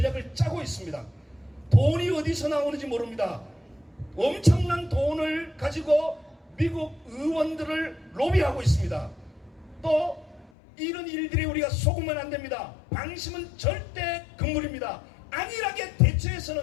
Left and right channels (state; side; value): drops out; right; at 10.5 s